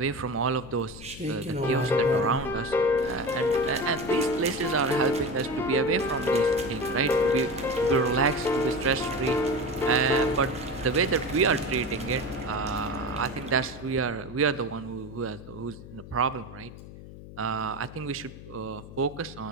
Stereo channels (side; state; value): left; noise; hum, 15 dB below the sound